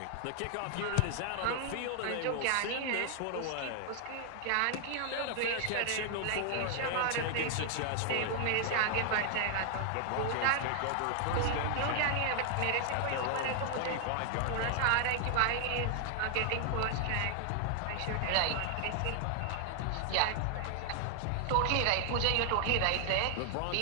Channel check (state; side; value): different; both; correlation 0.00